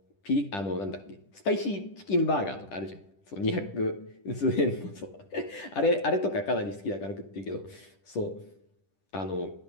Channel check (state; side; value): late; right; 10 ms